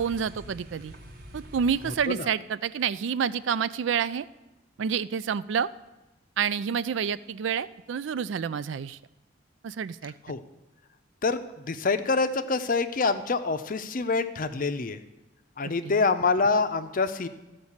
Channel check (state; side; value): normal; both; correlation -0.12